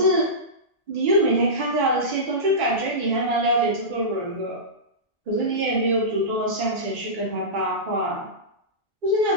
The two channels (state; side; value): normal; both; correlation -0.17